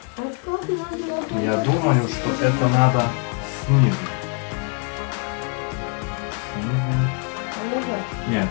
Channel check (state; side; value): quieter; right; 38.4 dB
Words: А как нужно? Я думаю, что это надо снизу. Снизу. Нет,